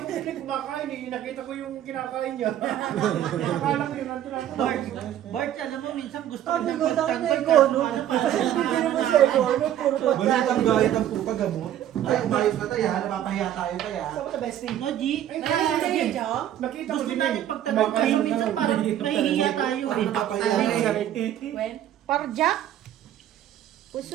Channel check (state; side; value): quieter; left; 11.4 dB